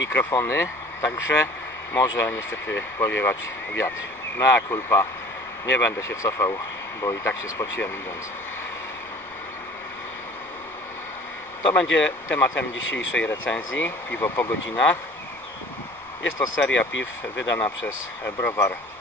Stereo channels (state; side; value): noise; left; rumble, 29 dB below the sound